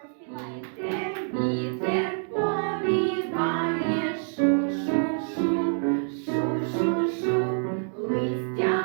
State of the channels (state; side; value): silent; left; 60 dB below the other